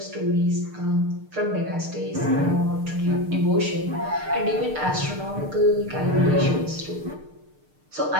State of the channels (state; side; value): late; left; 6.6 ms